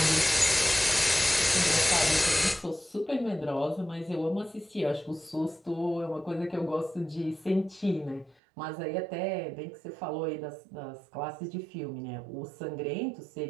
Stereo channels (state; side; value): drops out; left; at 8.3 s